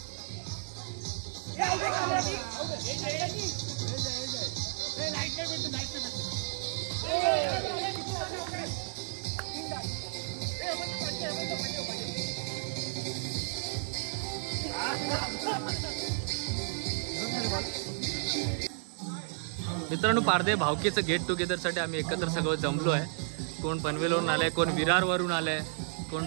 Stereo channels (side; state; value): left; silent; digital silence